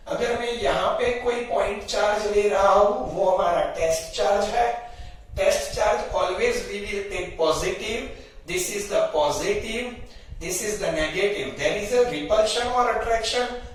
अगर मैं यहां पे कोई पॉइंट चार्ज ले रहा हूं, वो हमारा टेस्ट चार्ज है। Test charge always we will take positive, this is the positive, this is the negative. There is a repulsion और अट्रैक्शन।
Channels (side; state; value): both; identical; correlation 1.00